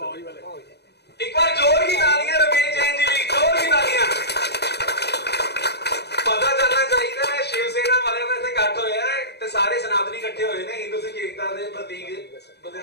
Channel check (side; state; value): right; late; 0.48 ms